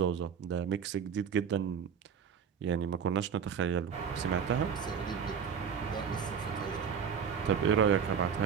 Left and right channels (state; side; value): quieter; left; 7.1 dB